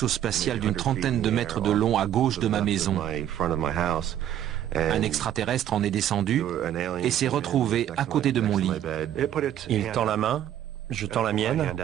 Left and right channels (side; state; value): left; quieter; 11.1 dB